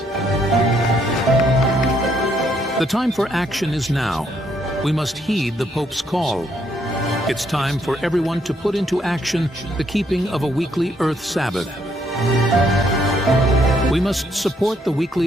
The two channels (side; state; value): both; normal; correlation 0.72